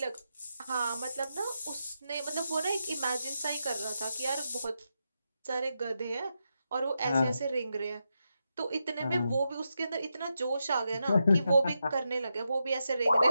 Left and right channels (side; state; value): both; inverted; correlation -0.86